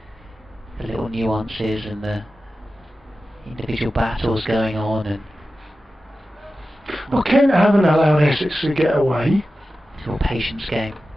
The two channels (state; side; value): normal; both; correlation 0.94